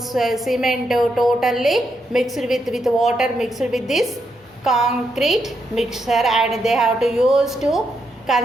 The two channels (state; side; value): normal; both; correlation 0.81